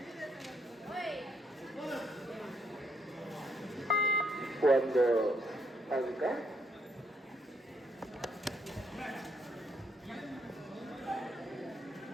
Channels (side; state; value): both; normal; correlation 0.72